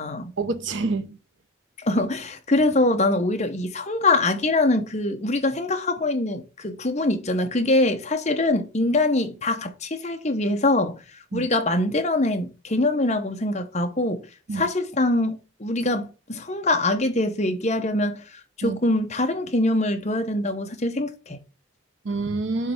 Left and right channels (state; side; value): normal; both; correlation 0.30